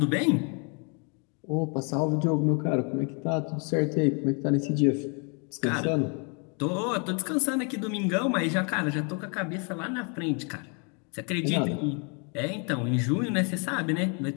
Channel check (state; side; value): quieter; right; 36.3 dB